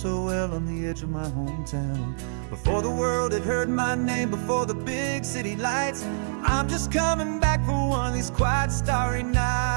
well on the edge of my hometown. Before the world had heard my name, before the big city lights, I'm just coming back for one of these quiet, starry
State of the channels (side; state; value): left; silent; digital silence